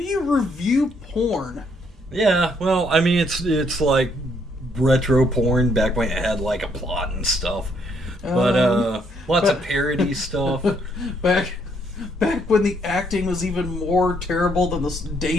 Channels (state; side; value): normal; both; correlation 0.70